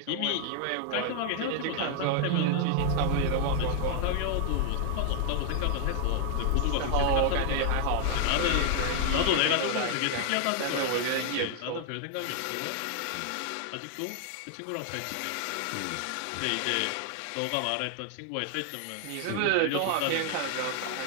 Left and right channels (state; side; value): different; both; correlation 0.00